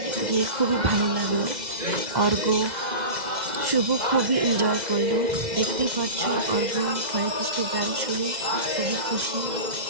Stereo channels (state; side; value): late; left; 2.0 ms